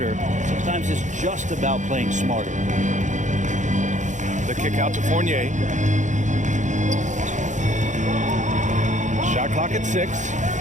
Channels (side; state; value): left; late; 0.35 ms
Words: Sometimes it's just about playing smarter. The kick out to Fournier. Shot clock at 6.